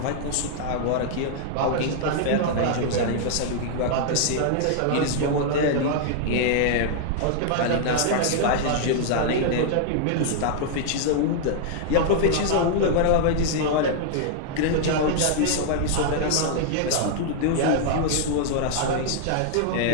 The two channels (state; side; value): different; both; correlation -0.01